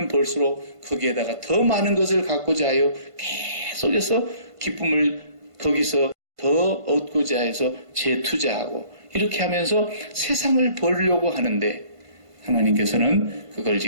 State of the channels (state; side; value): late; left; 1.5 ms